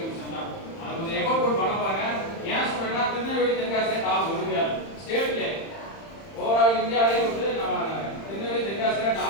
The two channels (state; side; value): late; right; 31 ms